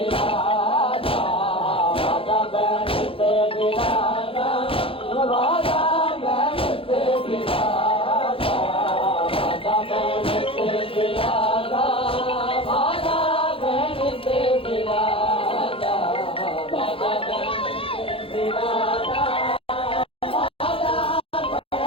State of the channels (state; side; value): late; right; 0.27 ms